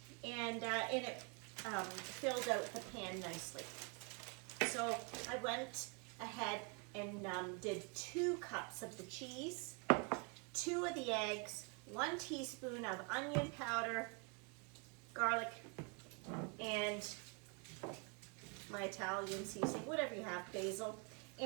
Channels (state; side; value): quieter; left; 34.5 dB